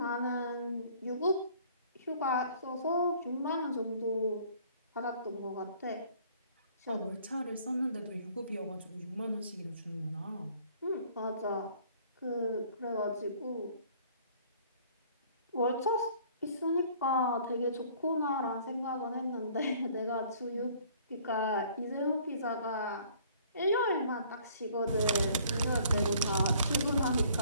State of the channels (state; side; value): inverted; both; correlation -0.56